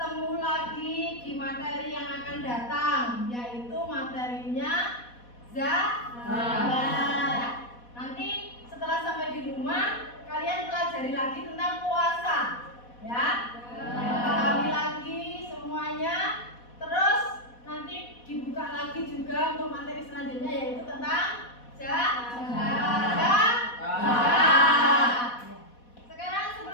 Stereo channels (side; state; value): right; late; 4.1 ms